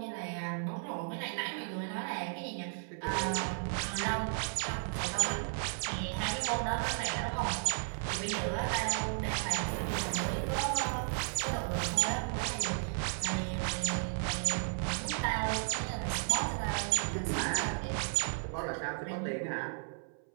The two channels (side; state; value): left; silent; 55 dB below the other